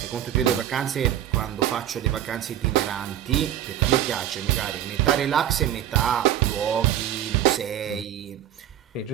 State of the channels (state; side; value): quieter; left; 11.3 dB